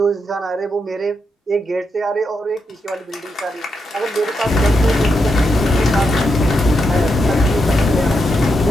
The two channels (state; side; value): normal; both; correlation 0.84